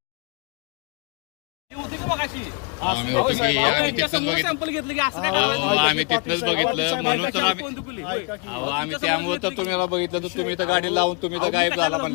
आम्ही होतो की आम्ही तिथंच बघितलं, आम्ही तिथनंच बघितलं म्हणून तर आम्ही त्यामुळे तर तुम्ही बघितलं तर तुम्ही तर गाडी लावून तुम्ही तर गायब झाला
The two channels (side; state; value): right; quieter; 31.5 dB